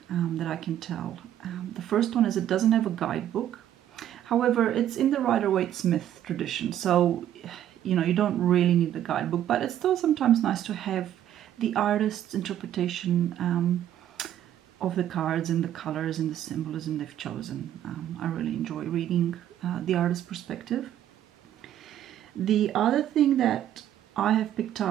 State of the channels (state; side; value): quieter; left; 11.3 dB